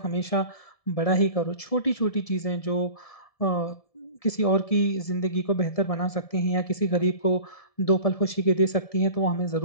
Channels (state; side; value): late; right; 1.7 ms